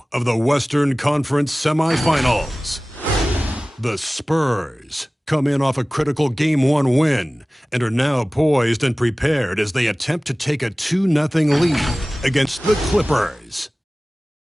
of the Western Conference semifinals. The Spurs come in off a critical Game 1 win and are now poised and prepared as they attempt to take a 2-0 lead against the Clippers.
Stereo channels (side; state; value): both; normal; correlation 0.98